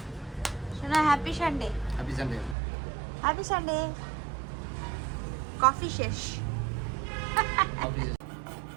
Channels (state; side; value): drops out; left; at 2.6 s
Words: শোনা, happy Sunday, happy Sunday. Happy Sunday. Coffee শেষ।